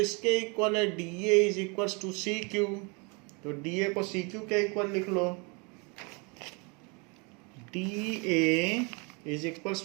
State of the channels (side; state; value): left; quieter; 31.2 dB